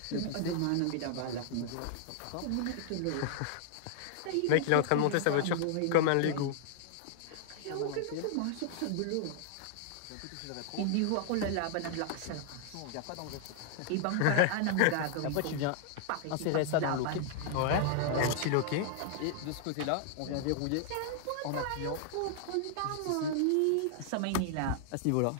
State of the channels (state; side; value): different; both; correlation -0.01